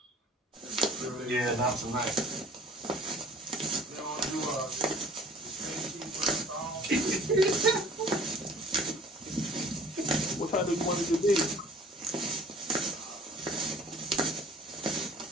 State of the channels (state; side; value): normal; both; correlation 0.49